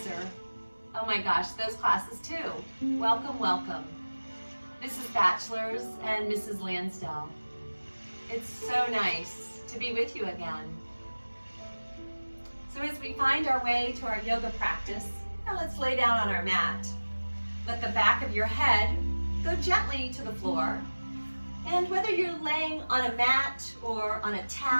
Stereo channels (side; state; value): both; inverted; correlation -1.00